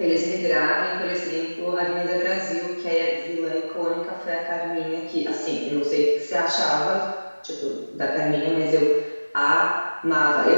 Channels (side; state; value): both; inverted; correlation -1.00